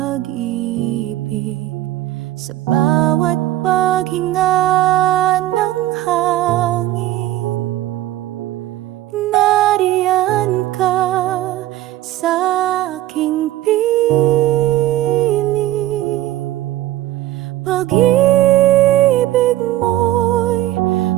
Sa bawat paghinga ng hangin, nariyan ka sa aking piling. Pag-ibig mo'y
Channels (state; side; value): quieter; left; 14.9 dB